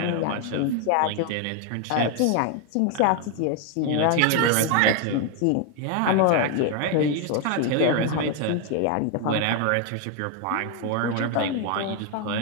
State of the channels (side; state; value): both; different; correlation 0.01